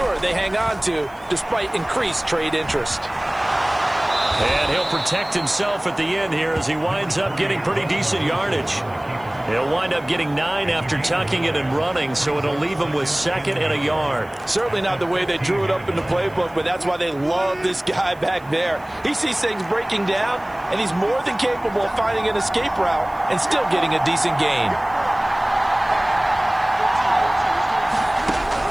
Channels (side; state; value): right; noise; hiss, 29 dB below the sound